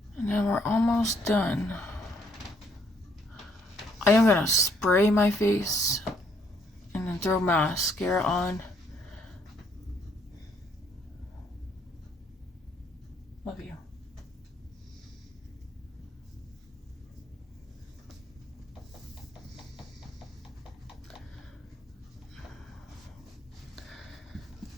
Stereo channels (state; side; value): normal; both; correlation 0.68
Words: And then we're almost done. I am gonna spray my face and then throw mascara on. Love you.